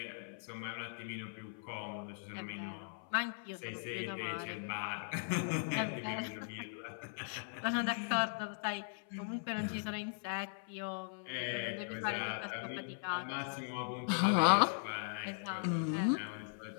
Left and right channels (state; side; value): silent; right; 52 dB below the other